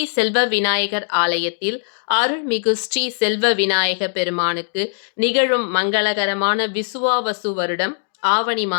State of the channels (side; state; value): right; silent; digital silence